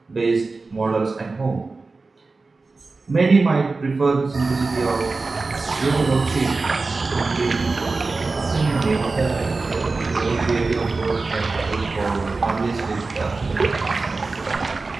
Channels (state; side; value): quieter; left; 3.8 dB